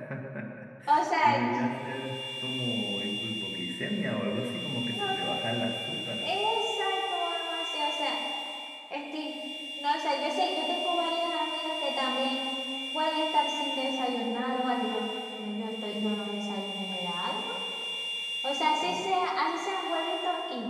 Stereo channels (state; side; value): identical; both; correlation 1.00